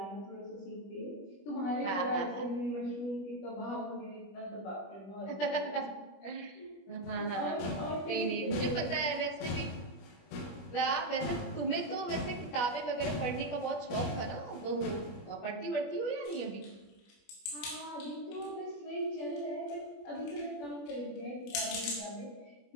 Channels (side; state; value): right; late; 21 ms